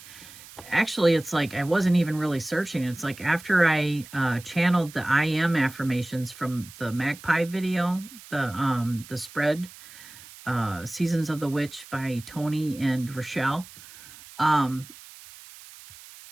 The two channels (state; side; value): noise; right; hiss, 18 dB below the sound